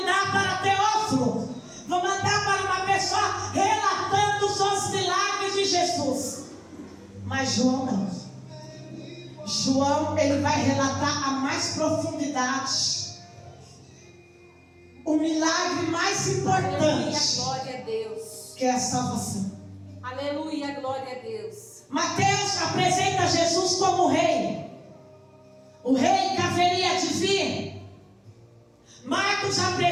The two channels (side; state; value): both; identical; correlation 1.00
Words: para Teófilo, vou mandar para uma pessoa relatando os milagres de Jesus. Mas João não. João, ele vai relatar a mais profundidade, o milagre mais importante, glória a Deus, que é a salvação. Aleluia, glória a Deus. Mateus apresenta Jesus como rei, o rei que haveria de vir. Marcos